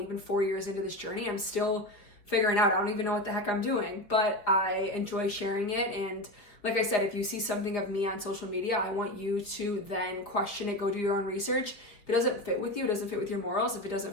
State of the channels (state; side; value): late; right; 4.8 ms